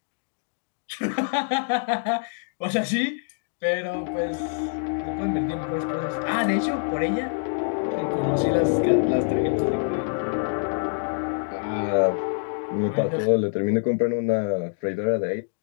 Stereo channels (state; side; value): silent; right; digital silence